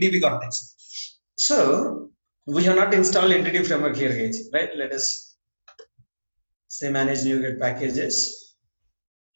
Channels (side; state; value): both; inverted; correlation -1.00